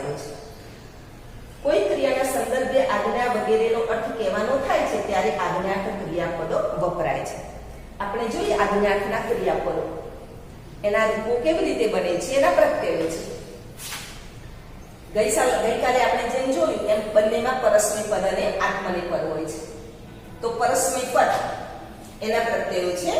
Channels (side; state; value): both; identical; correlation 1.00